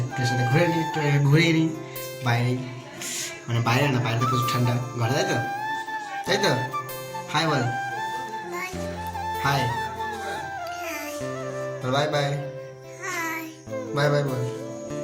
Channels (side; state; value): both; identical; correlation 1.00